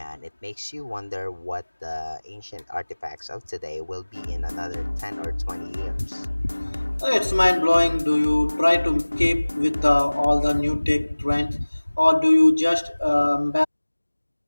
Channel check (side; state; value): both; inverted; correlation -1.00